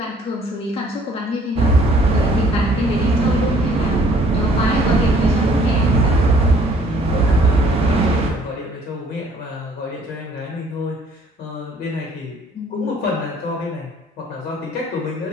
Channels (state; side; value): normal; both; correlation 0.59